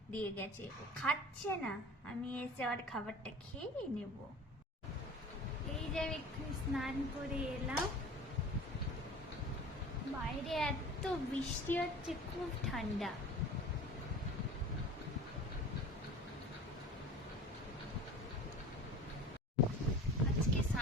দিয়ে গেছে, ও খাচ্ছে না। আমি এসে আর খাবারটা খেয়ে নেব। এই যে আমি একটু স্নান করে এলাম, বাইরে এত বৃষ্টি হচ্ছে, খুব ঠান্ডা। আজকে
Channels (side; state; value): both; normal; correlation 0.39